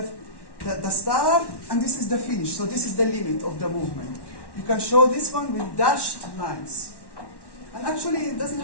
start, and this is the finish. So this is the limit of the movement. You can show this one with dashed lines. And actually, it doesn't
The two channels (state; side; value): late; right; 1.1 ms